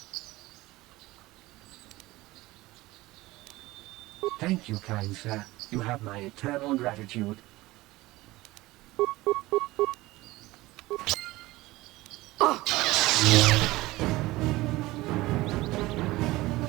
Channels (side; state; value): left; quieter; 19.1 dB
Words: Thank you, kind sir. You have my eternal gratitude. I'm